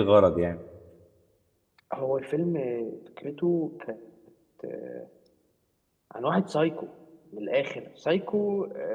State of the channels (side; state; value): both; identical; correlation 1.00